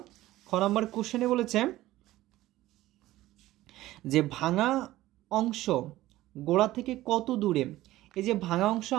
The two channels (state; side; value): quieter; left; 16.1 dB